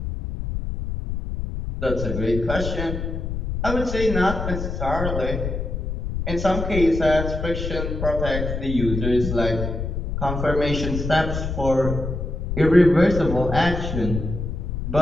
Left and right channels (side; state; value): left; noise; rumble, 4 dB below the sound